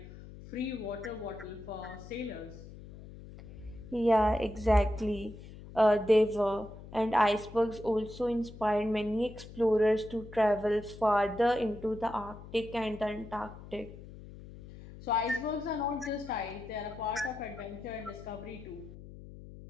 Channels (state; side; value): noise; left; hum, 16 dB below the sound